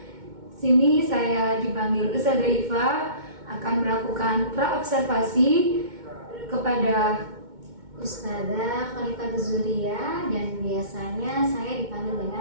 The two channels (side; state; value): left; late; 2.2 ms